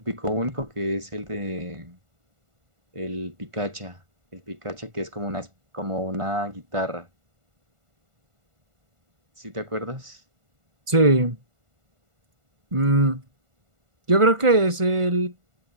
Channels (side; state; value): left; late; 1.4 ms